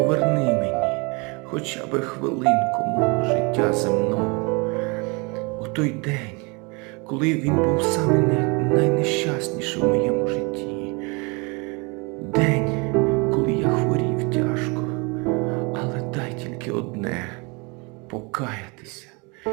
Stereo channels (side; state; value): left; quieter; 29.7 dB